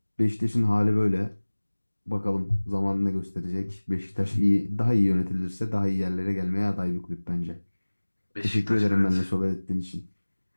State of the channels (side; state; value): both; inverted; correlation -1.00